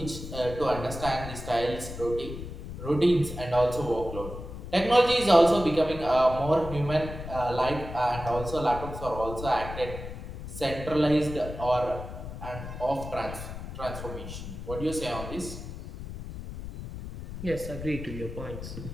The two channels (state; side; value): noise; left; rumble, 9 dB below the sound